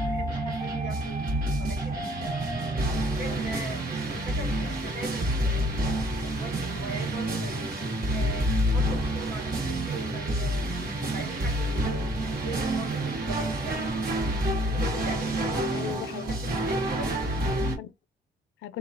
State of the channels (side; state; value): both; normal; correlation 0.60